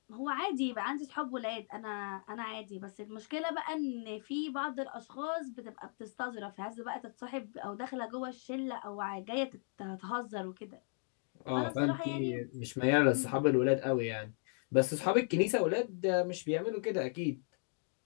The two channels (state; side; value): silent; right; 53 dB below the other